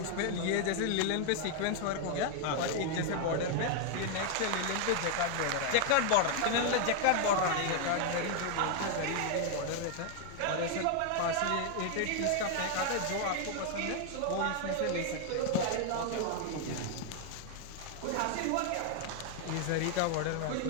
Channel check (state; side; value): different; both; correlation 0.00